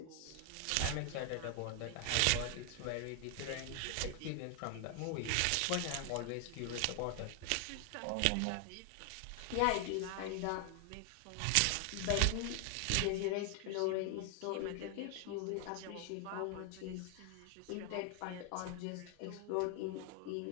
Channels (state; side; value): different; both; correlation 0.00